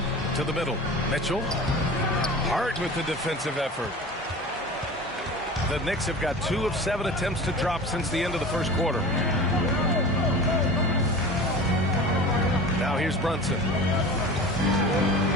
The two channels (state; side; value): normal; both; correlation 0.36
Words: to the middle. Mitchell. Hart with the defensive effort. The Knicks have got 2 of 7 attempts to drop since the end of the first quarter. Now here's Brunson.